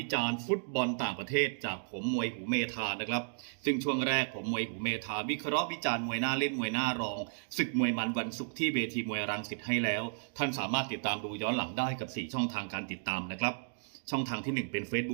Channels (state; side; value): silent; left; digital silence